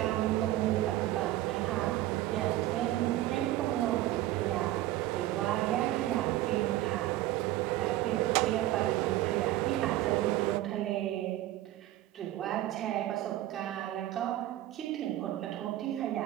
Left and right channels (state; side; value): quieter; left; 15.0 dB